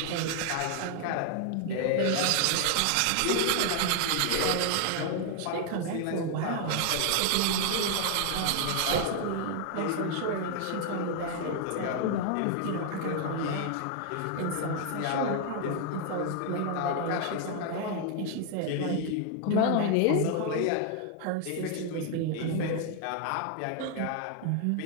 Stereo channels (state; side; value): different; both; correlation 0.00